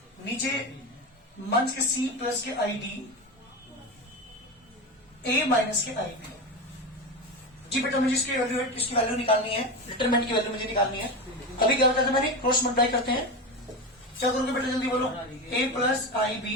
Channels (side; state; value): both; normal; correlation 0.20